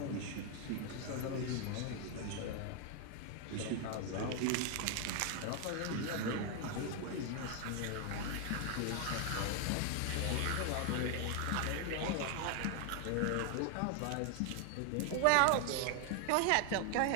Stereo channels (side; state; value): both; different; correlation 0.00